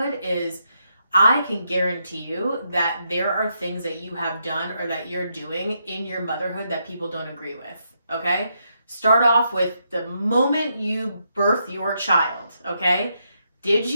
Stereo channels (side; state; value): both; inverted; correlation -0.80